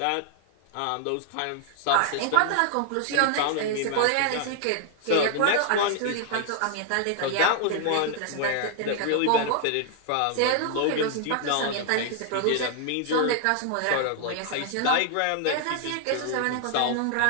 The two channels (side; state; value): both; different; correlation 0.00